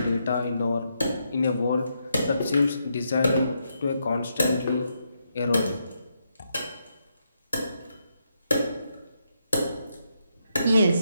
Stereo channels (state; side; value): inverted; both; correlation -0.81